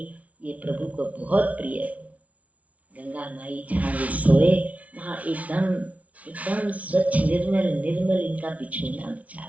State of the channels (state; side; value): late; left; 0.068 ms